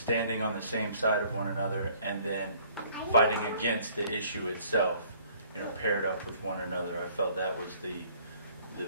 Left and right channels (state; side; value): inverted; both; correlation -0.58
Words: on the same side of one another and then fighting against the issue itself, paired up with one another. I felt that was the